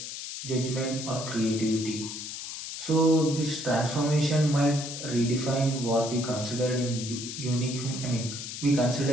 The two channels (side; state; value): left; noise; hiss, 8 dB below the sound